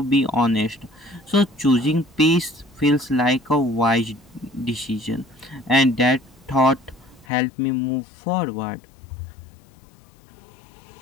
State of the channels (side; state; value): right; drops out; at 7.2 s